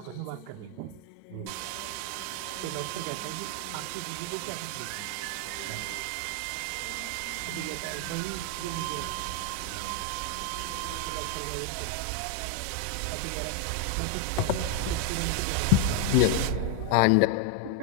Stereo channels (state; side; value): different; both; correlation 0.01